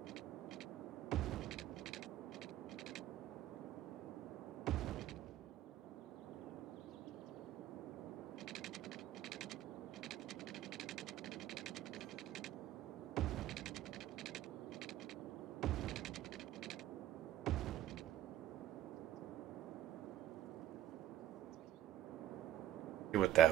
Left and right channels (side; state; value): left; quieter; 12.9 dB